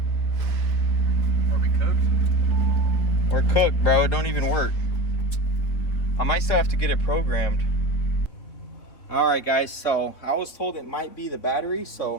We're cooked, bro. It don't even work. I might still have to get it programmed. All right, guys, so I was told it might be the battery,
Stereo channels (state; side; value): late; right; 3.6 ms